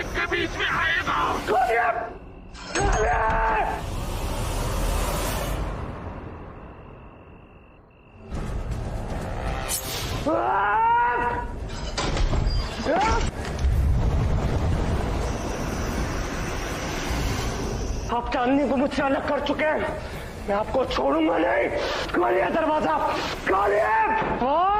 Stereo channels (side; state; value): both; identical; correlation 1.00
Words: के बीच में आएगा। आप चांदनी को मुझसे अलग कर चुके हैं, मैं आपको छोड़ूंगा नहीं। खोलिए दरवाजा, खोलिए।